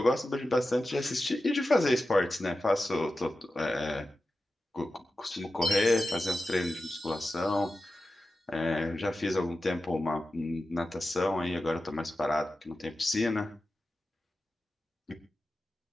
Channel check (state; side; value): normal; both; correlation 0.93